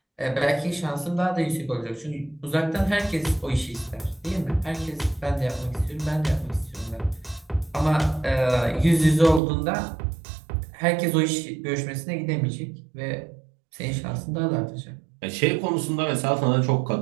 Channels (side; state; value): left; drops out; at 9.4 s